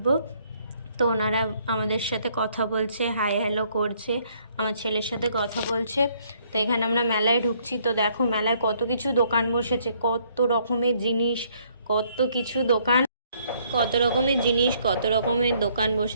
তো ওনারা আমাদের সাথে কথা বলছে, হাই হ্যালো করছে, আমার ছেলের সাথে কথা বলছে। তো এখানে আমরা মেলায় ঢুকছি। তো দেখো মেলায় কত কিছু দোকান বসেছে, কত রকমের জিনিস, কত কিছু দোকান, কত রকমের জিনিস, কত রকমের দোকান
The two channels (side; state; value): both; inverted; correlation -0.66